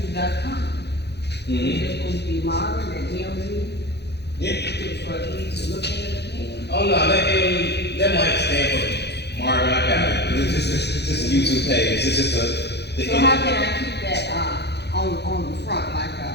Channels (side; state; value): right; late; 0.49 ms